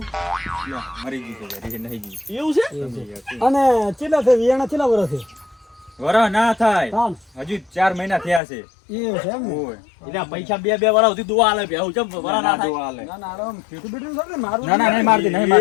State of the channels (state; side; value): drops out; right; at 8.4 s